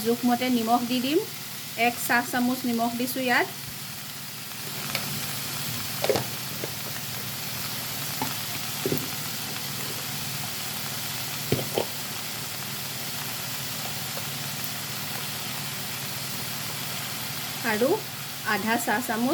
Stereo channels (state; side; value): identical; both; correlation 1.00